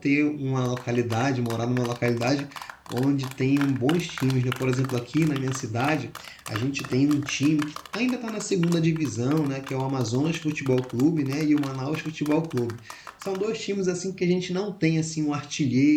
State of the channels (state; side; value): identical; both; correlation 1.00